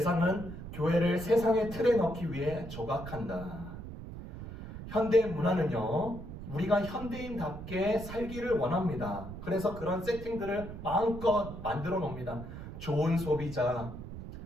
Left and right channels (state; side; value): noise; right; rumble, 10 dB below the sound